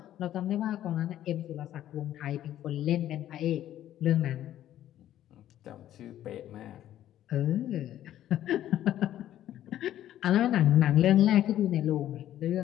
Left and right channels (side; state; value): right; quieter; 12.3 dB